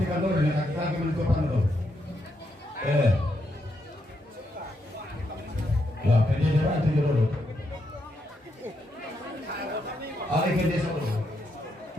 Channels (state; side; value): normal; both; correlation 0.80